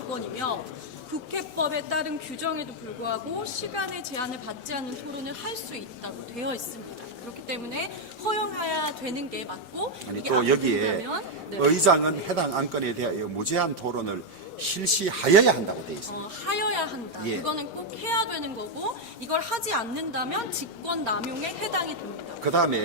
국회법에 따른 규정에도 불구하고 시간의 제한을 받지 않는 토론을 할 수 있다고 되어 있습니다. 그렇기 때문에 허용해야 되는 게 맞고 아니 이게 또 안 여기에 된다면, 네. 의장은 해당 안건에 대하여 무제한 토론을 실시하여야 한다고 되어 있습니다. 하여야 한다. 예. 그거는 꼭 해야 되는 거고 이걸 하지 않는다면 직권 남용에 해당이 됩니다. 그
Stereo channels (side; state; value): both; normal; correlation 0.01